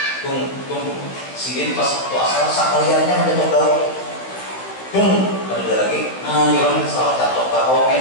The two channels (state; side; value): late; right; 15 ms